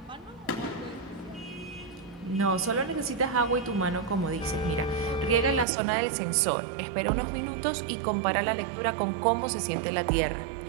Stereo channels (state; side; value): drops out; left; at 5.7 s